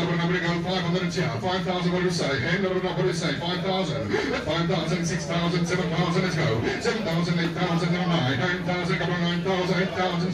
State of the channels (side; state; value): both; identical; correlation 1.00